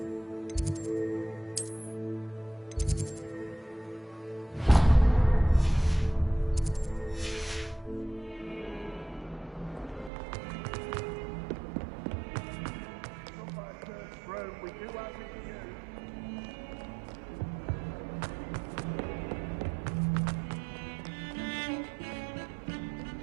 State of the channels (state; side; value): drops out; left; at 10.1 s